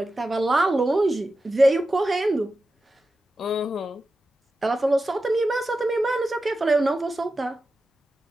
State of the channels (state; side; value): normal; both; correlation 0.92